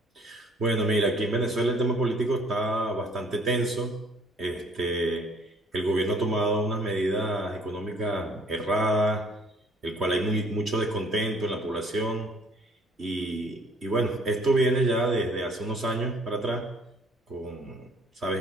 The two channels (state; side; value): normal; both; correlation 0.58